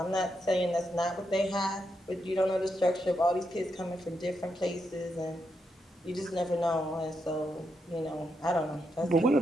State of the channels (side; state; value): both; normal; correlation 0.82